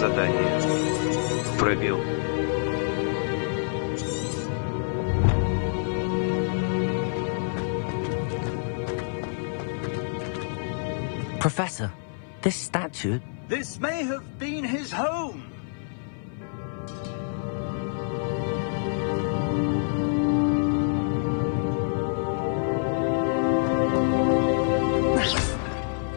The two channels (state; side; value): silent; right; digital silence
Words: Пробел. Professor, this statue... This may have been his home.